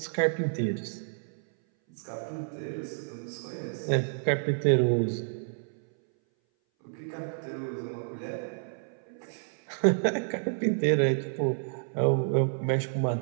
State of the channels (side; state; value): left; silent; 58 dB below the other